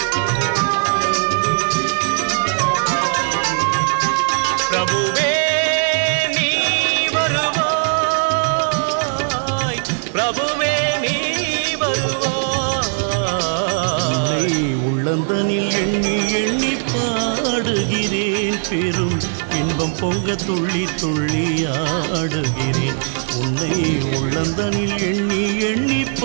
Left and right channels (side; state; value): left; silent; 67 dB below the other